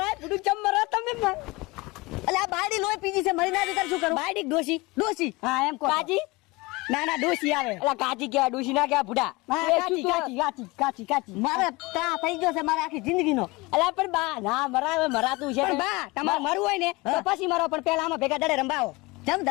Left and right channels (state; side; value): quieter; right; 23.3 dB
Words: પૂડું ચમ મરા તમે. અલે આ બાયડી લોહી પીજી છે. મરી ના દે શું કરું? બાયડી ડોશી ડોશી. હા એમ કો. કાજી ના ના ડોશી આવે. એલા કાચી કેવા ડૂસી ના કેવા ભૂડા. કાચી કાચી કાચી કાચી કાચી. મારે તા થઈ ગયો છે મારે આખી જિંદગીનો. અલા પણ બા ના મરાવે મરાતું છે. પણ બા તમારે મરવું હોય ને તો પછી મરો. પણ પેલા આમાં ભેગા દડે રંબાવો. જમ